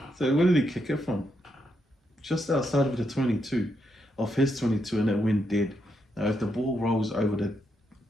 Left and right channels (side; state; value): both; normal; correlation 0.80